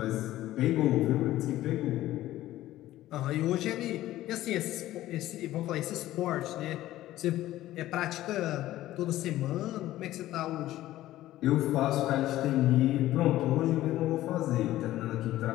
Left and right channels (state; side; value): quieter; right; 14.9 dB